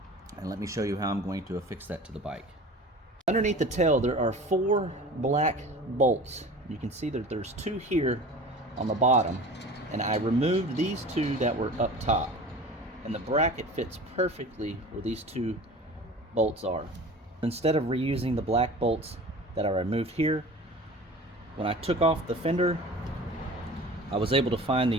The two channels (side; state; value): both; normal; correlation 0.39